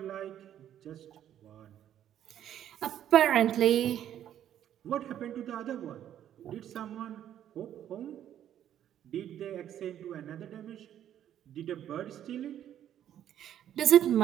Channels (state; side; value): quieter; left; 10.7 dB